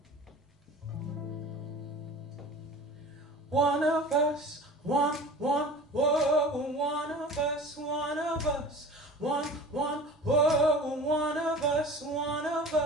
One of us, one, whoa, one of us, one of us, one, whoa, one of us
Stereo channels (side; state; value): both; normal; correlation 0.40